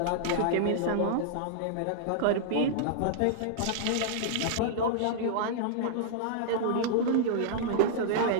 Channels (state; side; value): different; both; correlation -0.02